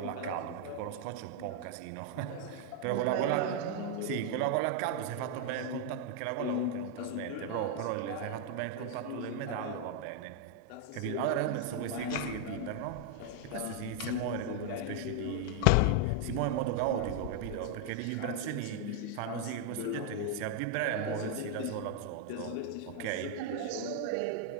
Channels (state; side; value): different; both; correlation 0.00